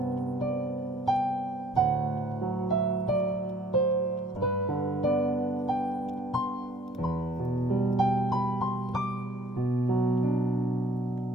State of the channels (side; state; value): both; normal; correlation 0.58